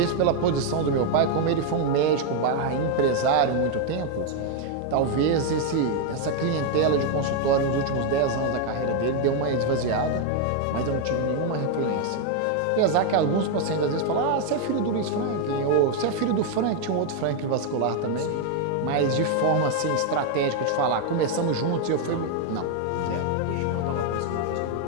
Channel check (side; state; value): both; different; correlation 0.01